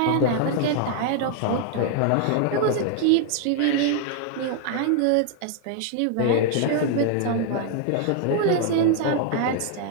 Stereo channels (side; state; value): both; different; correlation 0.00